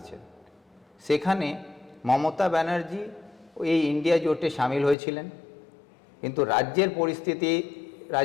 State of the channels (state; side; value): drops out; right; at 5.0 s